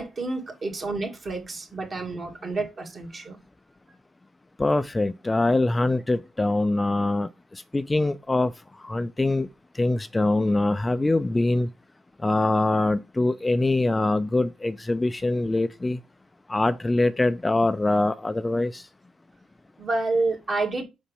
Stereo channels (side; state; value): both; normal; correlation 0.97